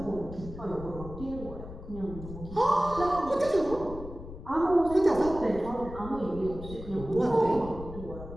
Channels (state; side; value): noise; left; rumble, 12 dB below the sound